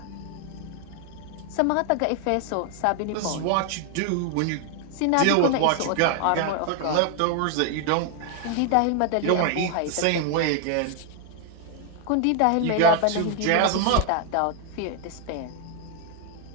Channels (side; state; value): both; different; correlation 0.00